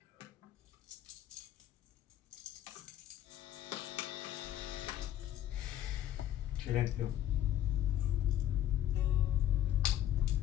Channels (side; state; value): right; quieter; 11.8 dB